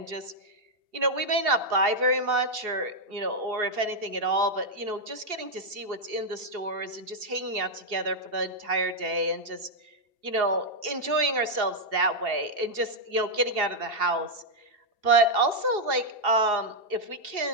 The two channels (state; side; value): late; left; 2.7 ms